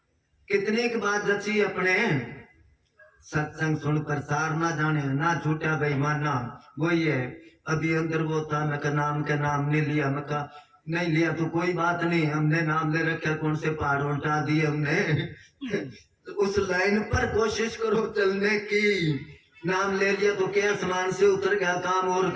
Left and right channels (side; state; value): both; identical; correlation 1.00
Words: कितनी की बात जची अपने, सत्संग सुन प्रसार ना जाने ना छूटा बेईमाना। वही है अभी अंदर वो था, मैं नाम के नाम नहीं लिया। मैं कहा नहीं लिया तो कोई बात नहीं, हमने नाम ले रखा, कौन से पहाड़ उल्टा दिए हमने। उस लाइन पर कोशिश करो चलने की। नाम ले लिया तो क्या आसमान से उतर गया, काम और